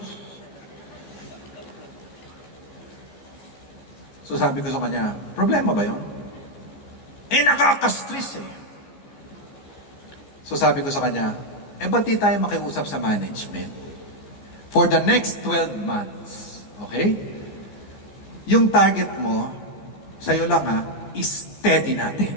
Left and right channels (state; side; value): late; right; 14 ms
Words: So sabi ko sa kanya, problema ba yun? Eh nakaka-stress eh. So sabi ko sa kanya, ba't di tayo makiusap sa management? For the next 12 months, okay? Yung target mo, sa'yo lang ha, is steady